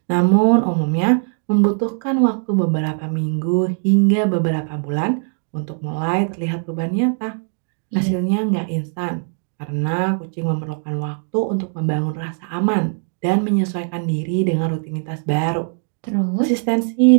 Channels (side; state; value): left; silent; 56 dB below the other